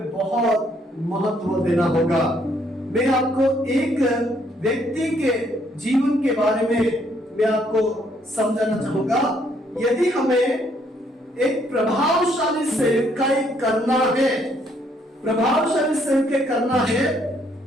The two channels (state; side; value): normal; both; correlation 0.69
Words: बहुत महत्व देना होगा। मैं आपको एक व्यक्ति के जीवन के बारे में मैं आपको समझाना चाहूंगा। यदि हमें एक प्रभावशाली सेवकाई करना है, प्रभावशाली सेवकाई करना है,